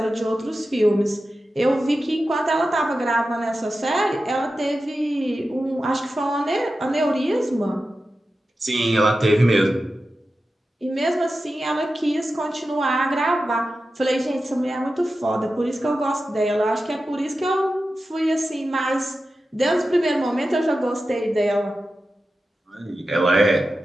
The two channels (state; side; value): normal; both; correlation 0.92